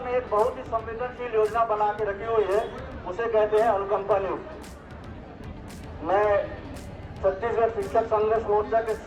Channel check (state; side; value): identical; both; correlation 1.00